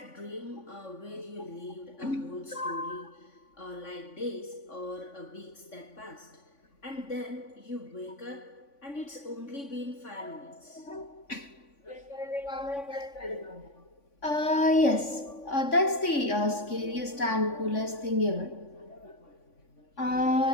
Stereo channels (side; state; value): right; late; 3.5 ms